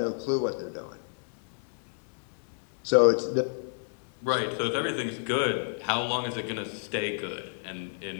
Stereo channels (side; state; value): right; silent; digital silence